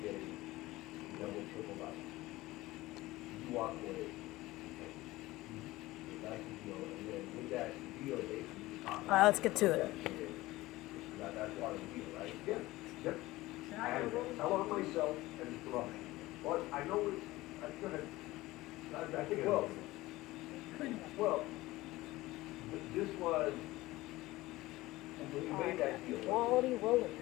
getting double, triple life. You walk away. That's the deal. And then with that deal, basically, Alright, let's get to it. That's part of the deal, right? Yeah. Yep. And I want myself and it's wrong. But I know it's gonna. I think well, this was when you made that deal. Quality welding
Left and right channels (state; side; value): quieter; right; 18.7 dB